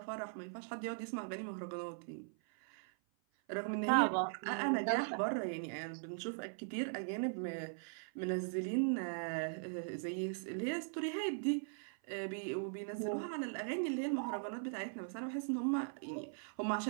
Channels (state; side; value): silent; left; 51 dB below the other